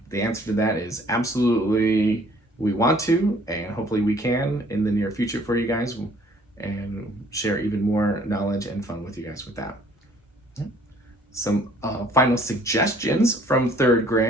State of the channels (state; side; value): normal; both; correlation 0.58